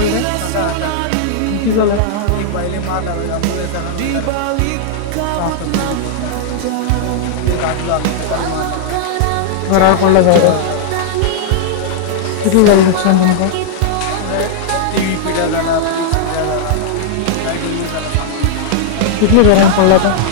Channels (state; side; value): different; both; correlation -0.01